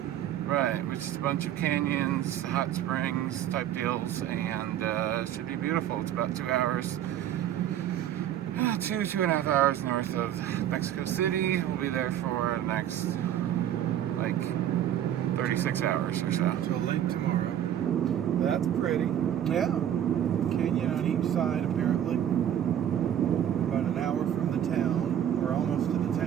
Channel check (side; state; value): left; quieter; 10.6 dB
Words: Right, which is a bunch of canyons, hot springs type deals, and it should be beautiful. It's about 2 hours. 2.5 hours north of Mexico City. We'll be there for the next, 36 hours or so. Till late tomorrow. That's pretty. Yeah. Canyon on each side, apparently. About an hour from the town. We're almost to the